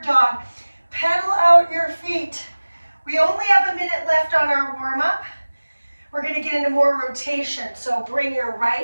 dog. Pedal out your feet. We only have a minute left on our warm-up. We're going to get into more rotation. So bring your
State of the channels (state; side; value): inverted; both; correlation -1.00